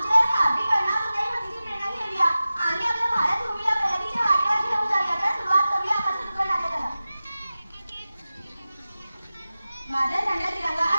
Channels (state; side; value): inverted; both; correlation -0.95